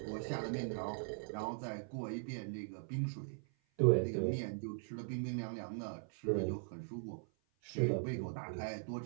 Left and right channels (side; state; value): left; silent; 51 dB below the other